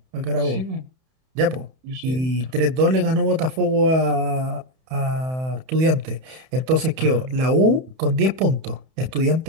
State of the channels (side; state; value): left; late; 31 ms